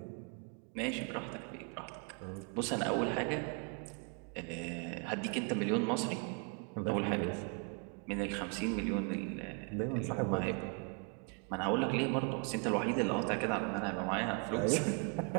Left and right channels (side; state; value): left; quieter; 36.8 dB